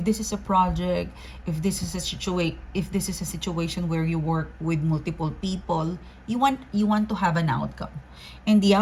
this is a project, if this is a situation where you work with multiple people, you want to have an outcome, and the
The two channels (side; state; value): both; identical; correlation 1.00